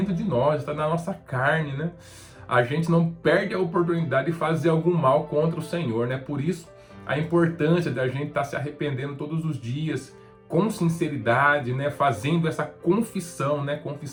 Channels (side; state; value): both; identical; correlation 1.00